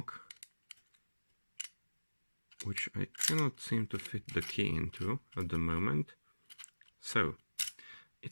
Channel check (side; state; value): both; inverted; correlation -1.00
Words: which I cannot seem to fit the key into at the moment. So